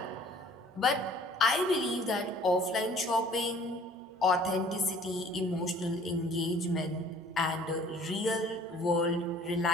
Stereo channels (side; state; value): both; normal; correlation 0.52